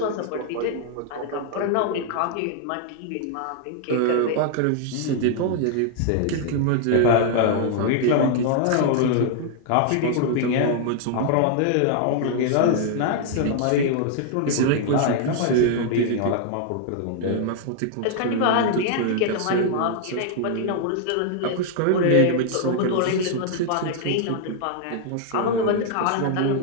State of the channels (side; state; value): both; different; correlation 0.00